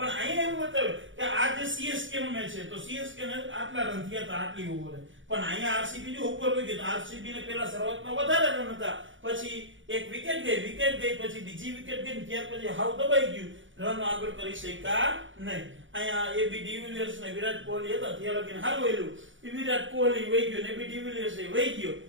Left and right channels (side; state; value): left; late; 0.56 ms